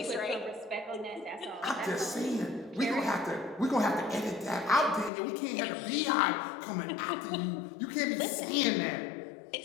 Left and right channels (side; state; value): right; drops out; at 5.1 s